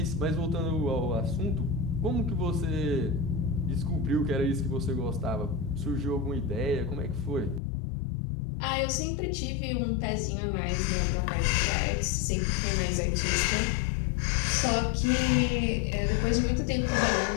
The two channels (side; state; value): right; drops out; at 7.6 s